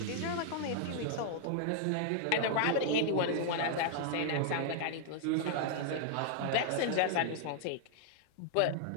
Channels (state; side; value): different; both; correlation -0.01